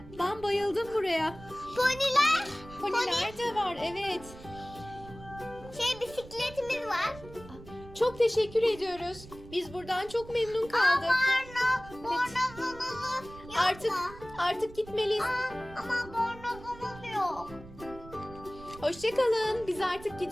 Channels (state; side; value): noise; right; rumble, 17 dB below the sound